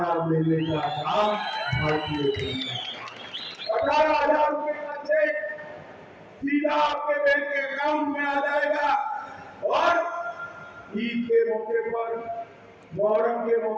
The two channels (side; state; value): both; identical; correlation 1.00